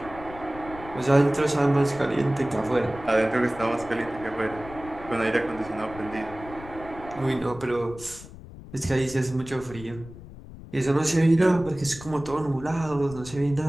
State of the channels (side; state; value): left; noise; rumble, 16 dB below the sound